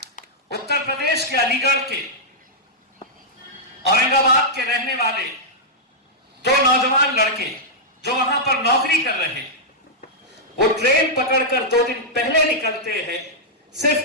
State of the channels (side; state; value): both; normal; correlation -0.08